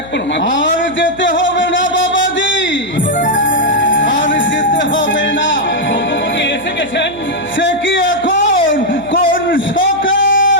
না মাধব। আর যেতে হবে না বাবাজি, আর যেতে হবে না। যদুপতি এসে গেছেন। সে কি এখন কোন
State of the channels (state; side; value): noise; right; hum, 21 dB below the sound